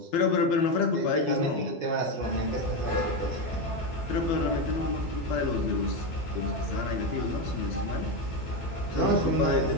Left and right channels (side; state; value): right; late; 12 ms